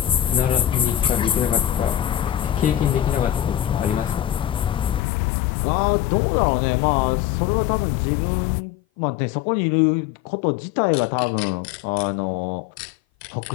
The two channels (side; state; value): right; drops out; at 5.0 s